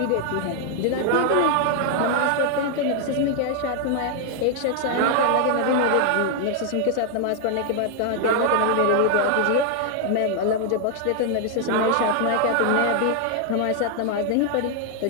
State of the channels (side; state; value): both; different; correlation 0.00